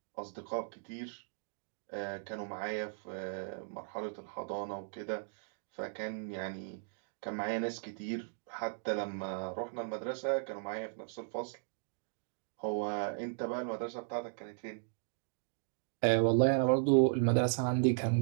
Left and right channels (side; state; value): left; silent; digital silence